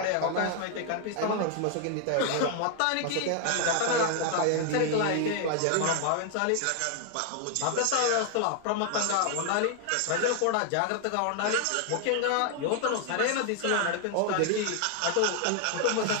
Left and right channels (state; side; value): different; both; correlation 0.00